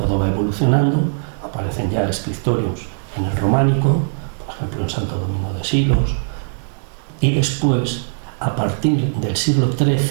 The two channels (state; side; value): silent; left; digital silence